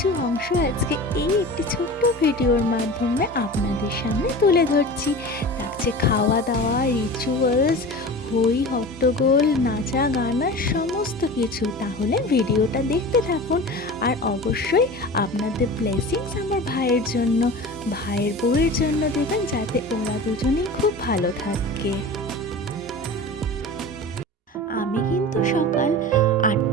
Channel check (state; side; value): normal; both; correlation 0.34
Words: অংশ আজকে এই একটি ছোট্ট ভিডিওর মাধ্যমে আপনাদের সামনে তুলে ধরছি। থাকছে খাওয়া দাওয়া, রিচুয়ালস, হই হট্টগোল, নাচা গানা, সমস্ত কিছু। তাহলে ভিডিওটা দেখতে থাকুন আর অবশ্যই আপনাদের ব্লেসিংস আমার ভাইয়ের জন্য, ভাইয়ের বউয়ের জন্য দেবেন, যাতে ওরা দুজনেই খুব ভালো থাকে। আমি কিন্তু সকাল